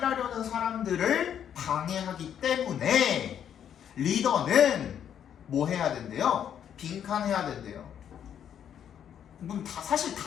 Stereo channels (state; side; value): quieter; right; 9.1 dB